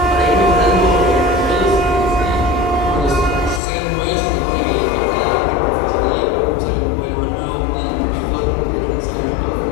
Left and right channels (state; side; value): drops out; right; at 3.6 s